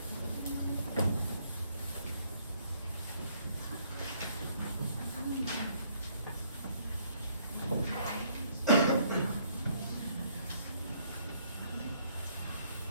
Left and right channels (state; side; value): inverted; both; correlation -0.67